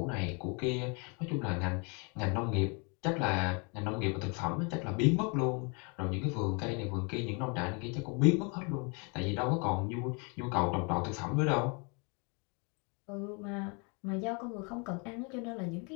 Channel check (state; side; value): quieter; right; 33.5 dB